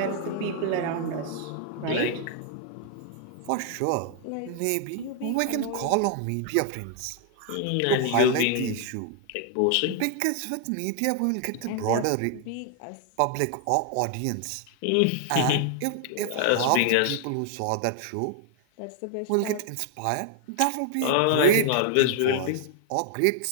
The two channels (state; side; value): different; both; correlation 0.00